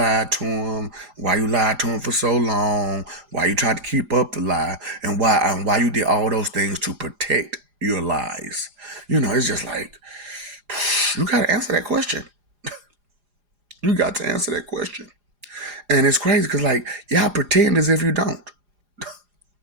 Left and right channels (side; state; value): left; late; 4.9 ms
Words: to them, why you lied to them for so long, why you tried to keep up the lie, and why you did all those things to protect your lies. It's just like, you got to answer that question. You got to answer that question. And it's crazy because, like, y'all pretend as if you don't.